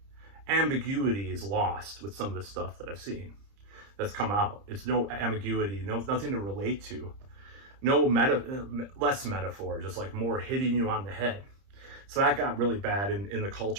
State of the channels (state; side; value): late; left; 30 ms